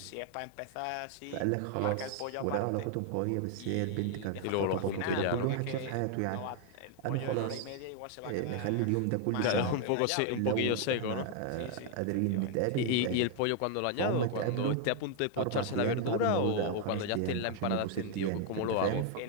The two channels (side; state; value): both; different; correlation 0.00